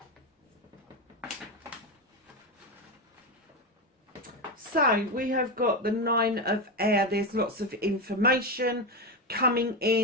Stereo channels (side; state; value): both; normal; correlation 0.13